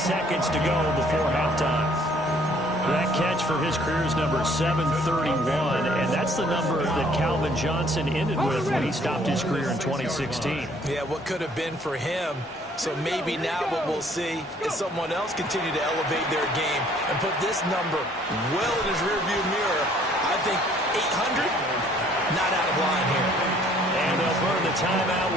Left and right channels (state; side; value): normal; both; correlation 0.60